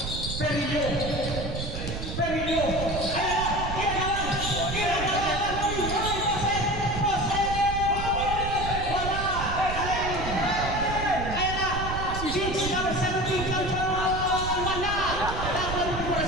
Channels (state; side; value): noise; right; rumble, 6 dB below the sound